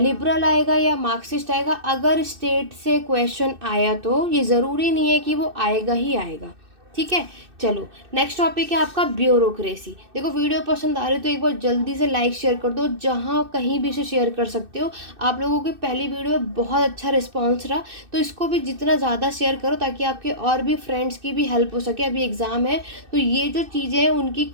आएगा या मार्क्सिस्ट आएगा। अगर स्टेट से क्वेश्चन आया तो ये ज़रूरी नहीं है कि वो आएगा ही आएगा, ठीक है। चलो नेक्स्ट टॉपिक है आपका ब्यूरोक्रेसी। देखो वीडियो पसंद आ रही है तो एक बार जल्दी से लाइक शेयर कर दो, जहाँ कहीं भी से शेयर कर सकते हो। आप लोगों की पहली वीडियो में बहुत अच्छा रिस्पांस रहा, तो इसको भी जितना ज़्यादा शेयर करो ताकि आपके और भी फ्रेंड्स की भी हेल्प हो सके। अभी एग्ज़ाम है तो ये जो चीज़ें हैं उनकी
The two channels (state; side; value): late; left; 2.6 ms